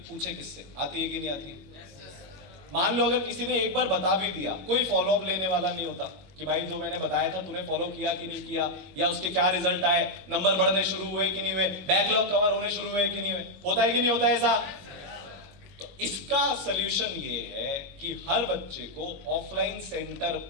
पूछे किससे आती है कि नहीं आती है? मान लो अगर किसी ने एक बार बता भी दिया, कोई फॉलो अप लेने वाला नहीं होता कि भाई जो मैंने बताया था तूने फॉलो किया कि नहीं किया, या उसके क्या रिजल्ट आए, नंबर बढ़ने शुरू हुए कि नहीं हुए, बैकलॉग कवर होने शुरू हुए कि नहीं हुए, होता है कि नहीं होता है ऐसा? तो इसका सलूशन ये है कि हर बच्चे को ऑफलाइन सेंटर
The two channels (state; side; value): late; left; 22 ms